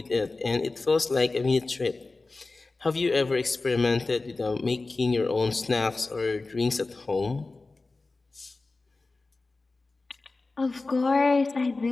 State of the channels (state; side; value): quieter; right; 3.5 dB